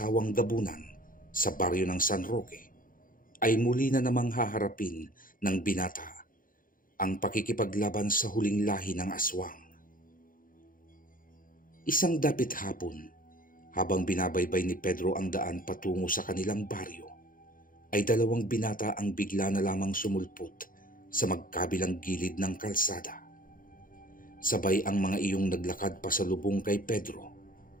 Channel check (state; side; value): late; right; 0.40 ms